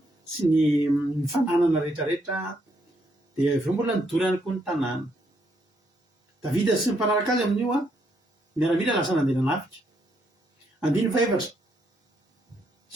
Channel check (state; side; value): normal; both; correlation 0.75